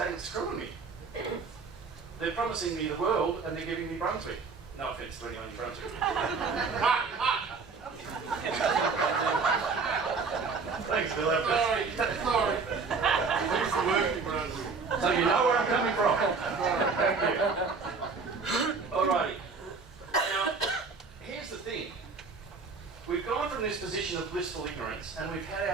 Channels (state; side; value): quieter; left; 4.7 dB